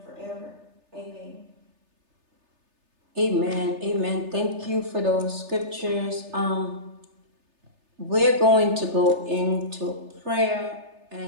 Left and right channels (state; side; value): late; left; 3.3 ms